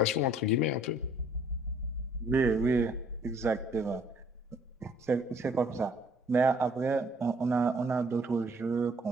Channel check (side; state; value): both; normal; correlation 0.60